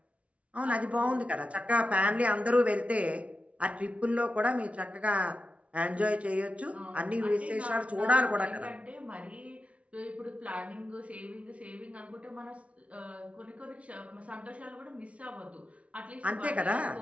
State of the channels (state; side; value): late; left; 0.064 ms